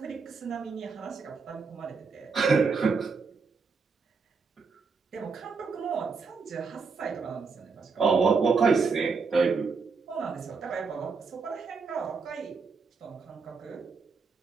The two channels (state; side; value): quieter; left; 4.9 dB